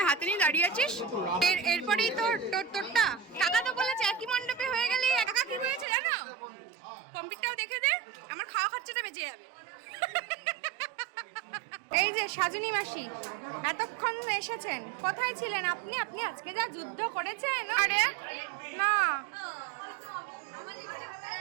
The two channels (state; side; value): drops out; left; at 5.9 s